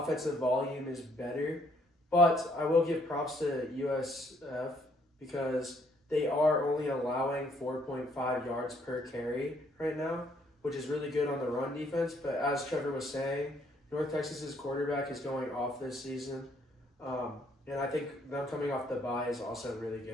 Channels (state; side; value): normal; both; correlation 0.67